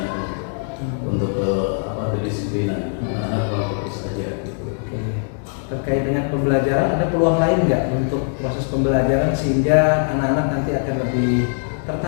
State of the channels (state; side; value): silent; right; 63 dB below the other